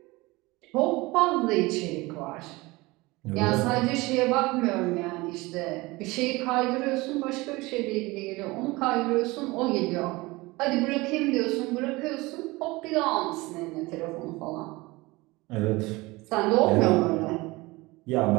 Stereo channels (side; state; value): left; quieter; 22.1 dB